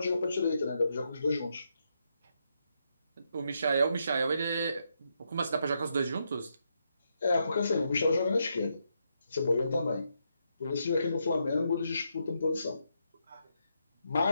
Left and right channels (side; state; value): both; inverted; correlation -0.80